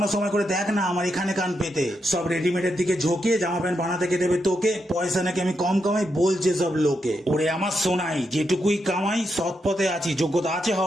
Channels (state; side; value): normal; both; correlation 0.83